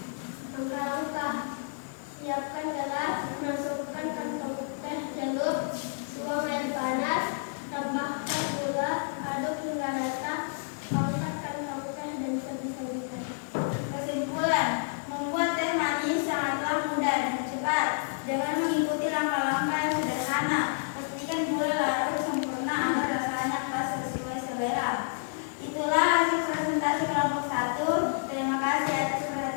Langkah-langkah: siapkan gelas, masukkan kantong teh celup, tuang air panas, tambahkan gula, aduk hingga rata, angkat kantong teh dan sajikan. Kesimpulan: membuat teh manis sangatlah mudah dan cepat. Dengan mengikuti langkah-langkah yang sederhana, pastikan gula larut sempurna agar rasanya pas sesuai selera. Itulah hasil presentasi kelompok 1. Terima kasih atas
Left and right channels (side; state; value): right; silent; digital silence